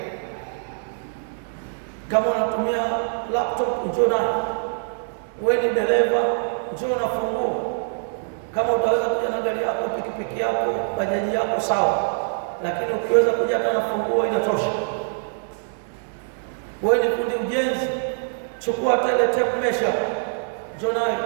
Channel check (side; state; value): left; silent; digital silence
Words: Kama unatumia laptop, njoo na. Wewe ni dereva, njoo na funguo. Kama utaweza kuja na gari yako, pikipiki yako, bajaji yako, sawa, lakini ukiweza kuja na funguo inatosha. Wewe ni fundi ujenzi, chukua tele tape measure, njoo nayo.